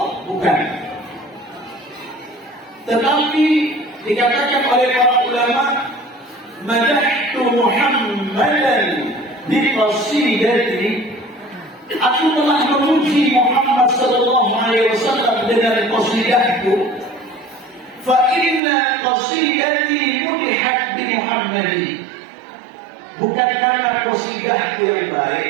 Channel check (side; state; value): left; drops out; at 18.6 s